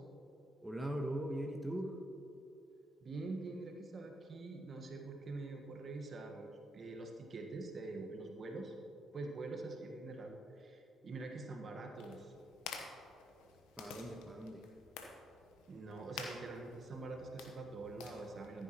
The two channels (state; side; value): normal; both; correlation 0.78